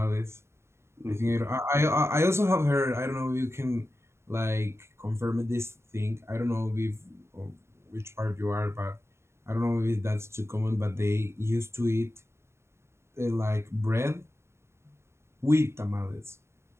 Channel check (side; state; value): left; late; 0.13 ms